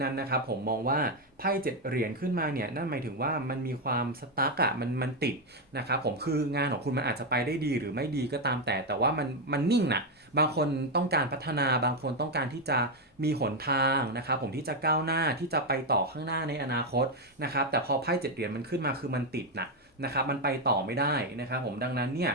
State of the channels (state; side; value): normal; both; correlation 0.05